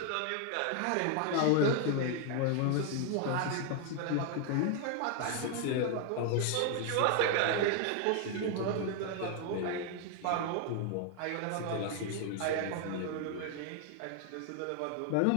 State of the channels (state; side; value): different; both; correlation 0.00